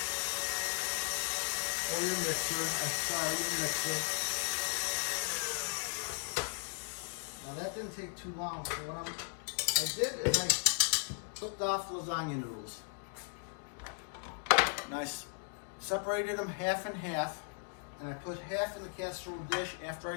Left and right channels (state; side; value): silent; right; 53 dB below the other